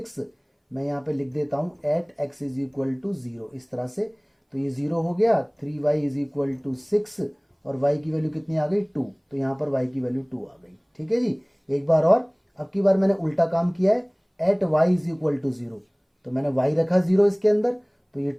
मैं यहाँ पे लिख देता हूँ at x is equal to 0, इस तरह से। तो ये 0 हो गया, 3y इज इक्वल टू 6, और y की वैल्यू कितनी आ गई 2, तो यहाँ पर y की वैल्यू 2 आ गई। ठीक है जी, एक बार और। अब की बार मैंने उल्टा काम किया है, at y is equal to 0, तो मैंने y रखा 0 इसके अंदर, तो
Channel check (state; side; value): identical; both; correlation 1.00